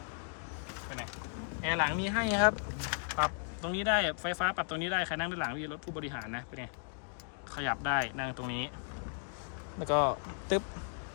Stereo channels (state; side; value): silent; right; digital silence